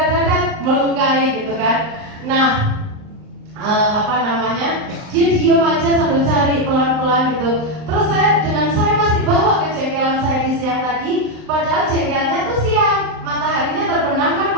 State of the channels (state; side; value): late; left; 39 ms